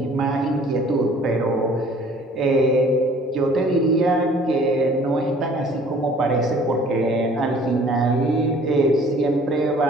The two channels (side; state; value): both; normal; correlation 0.53